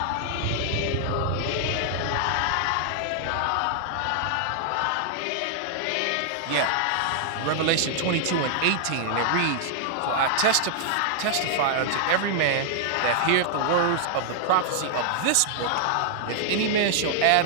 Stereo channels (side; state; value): both; different; correlation 0.00